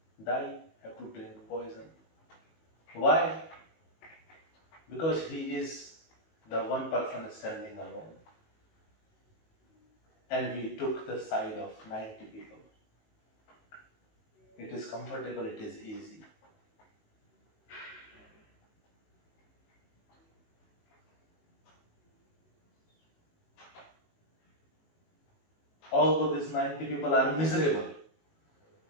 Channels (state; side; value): late; right; 19 ms